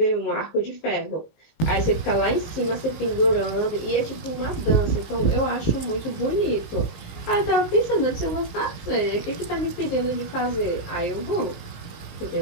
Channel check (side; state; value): right; late; 19 ms